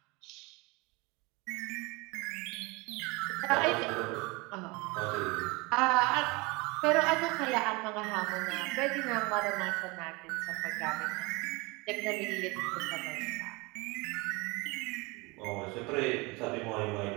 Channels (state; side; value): quieter; left; 25.8 dB